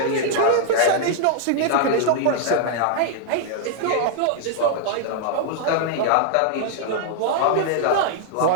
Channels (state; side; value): different; both; correlation 0.00